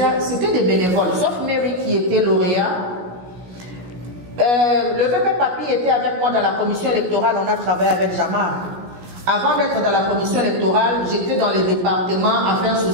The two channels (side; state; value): left; late; 17 ms